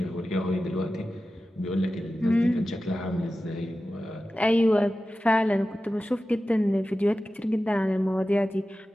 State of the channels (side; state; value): both; normal; correlation 0.94